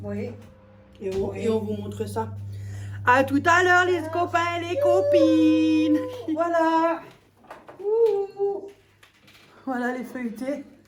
Oui. Et on vous montre ça. À tout à l'heure, les copains et les copines. Voilà. Ouh. Voilà les feuilletés.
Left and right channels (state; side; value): identical; both; correlation 1.00